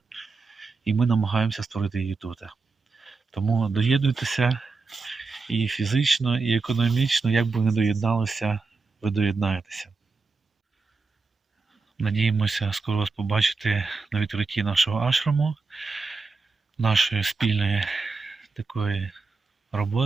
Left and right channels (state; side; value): quieter; left; 4.2 dB